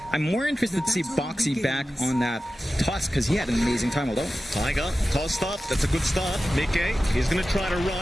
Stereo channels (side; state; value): both; normal; correlation 0.94